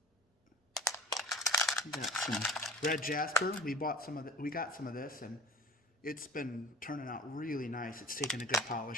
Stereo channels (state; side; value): normal; both; correlation 0.42